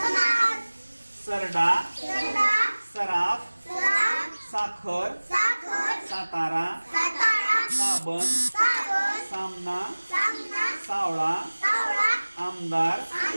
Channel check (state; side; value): inverted; both; correlation -1.00